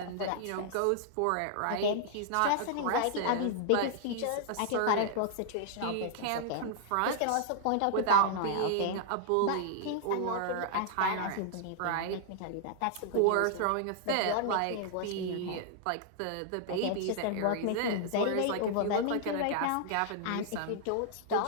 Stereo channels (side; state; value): both; different; correlation -0.01